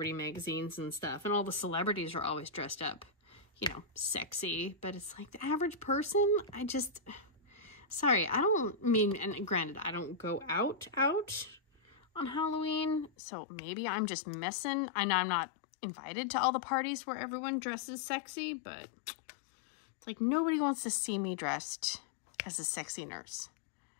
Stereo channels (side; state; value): right; drops out; at 13.1 s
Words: magazines and stuff, and all the celebrities are always dressed up, you know, sexy, but it's like the average person, sorry, I don't mean, and granted, I don't go out on Halloween, so maybe I'm just missing. I know I'm not invited to all the parties where everyone dresses sexy, but it's like nobody wants to see me dressed as a sexy nurse